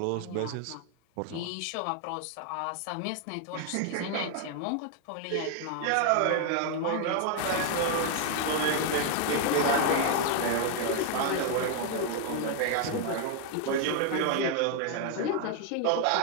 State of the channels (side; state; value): both; different; correlation 0.00